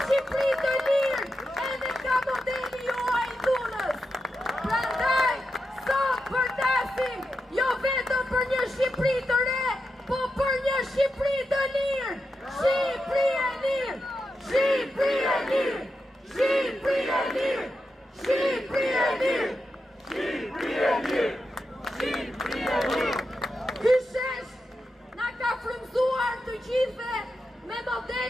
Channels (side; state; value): both; normal; correlation 0.88